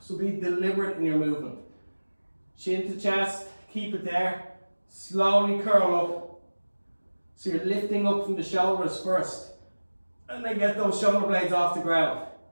So be deliberate in your movement. Chin to chest, keep it there. Slowly curl up. So you're lifting up from the shoulders first. And then get those shoulder blades off the ground.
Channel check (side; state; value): both; inverted; correlation -1.00